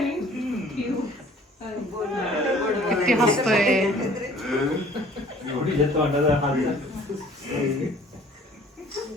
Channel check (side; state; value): both; normal; correlation 0.52